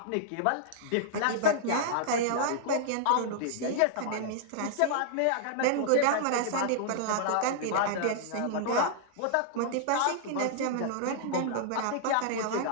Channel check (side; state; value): both; different; correlation -0.01